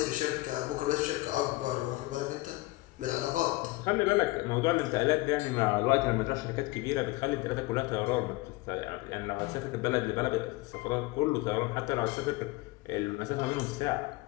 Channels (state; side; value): quieter; right; 20.8 dB